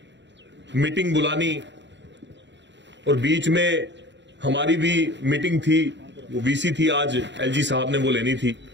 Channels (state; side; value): late; left; 0.52 ms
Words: मीटिंग बुलानी और बीच में हमारी भी मीटिंग थी, वो वीसी थी, आज एलजी साहब ने वो लेनी थी।